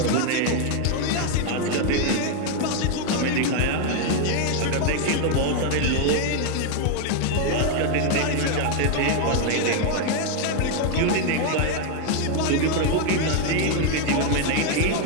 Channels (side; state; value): both; different; correlation 0.00